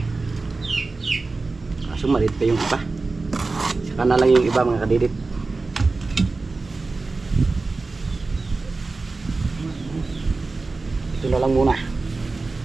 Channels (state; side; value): quieter; left; 3.7 dB